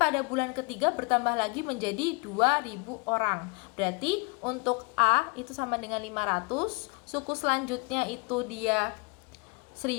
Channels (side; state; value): right; quieter; 30.8 dB